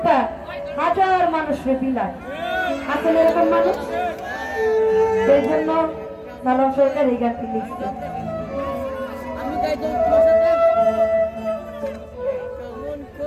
হাজার মানুষকে বিলায়। আসলে এরকম মানুষ, সেই জন্য সালাম সরকার এই গানটি লিখছে।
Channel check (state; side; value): identical; both; correlation 1.00